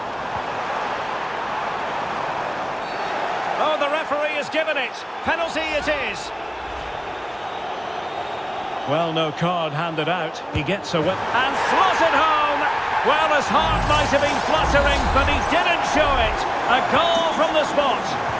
Oh, the referee has given it. Penalty it is. Well, no card handed out. He gets a whip and slotted home. Well, his heart might have been fluttering, but he didn't show it. A goal from the spot.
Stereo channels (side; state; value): both; identical; correlation 1.00